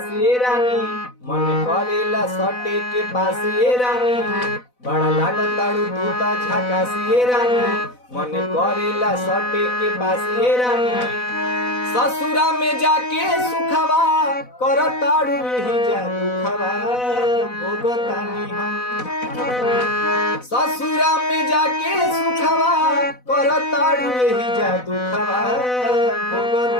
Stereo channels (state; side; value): late; right; 4.0 ms